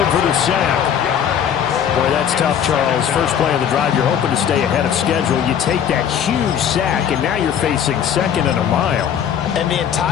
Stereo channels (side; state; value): right; quieter; 8.7 dB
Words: for the sack. Boy, that's tough, Charles. First play of the drive, you're hoping to stay ahead of schedule. You take that huge sack, and now you're facing 2nd and a mile. And the